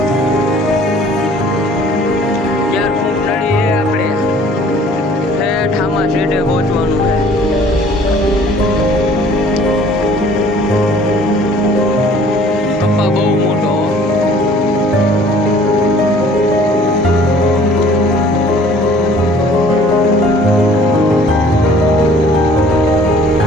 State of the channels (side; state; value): both; normal; correlation 0.53